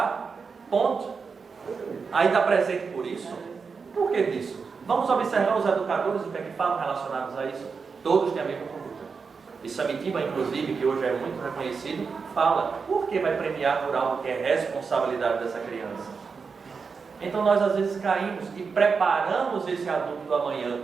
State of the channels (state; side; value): quieter; left; 5.2 dB